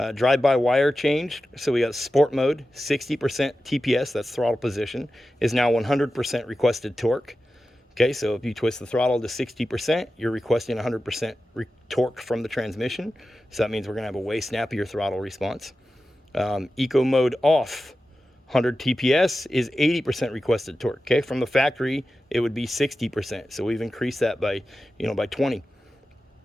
Drive-by-wire changed, so we got sport mode, 60% TPS, that's throttle position, is now 100% requested torque. Okay, so if you twist the throttle to 60%, you're requesting 100% torque from the transmission. So that means we're going to have a way snappier throttle response. Eco mode off, 100 TPS is 80% requested torque. Okay, from the factory, it would be 60%. So we've increased that by, by 20.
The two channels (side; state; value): both; normal; correlation 0.93